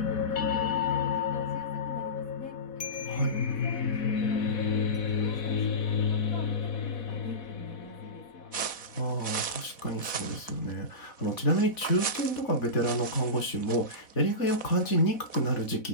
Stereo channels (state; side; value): late; right; 4.1 ms